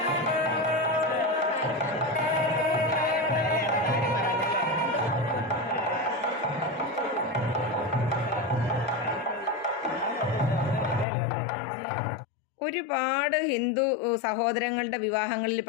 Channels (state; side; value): drops out; right; at 11.1 s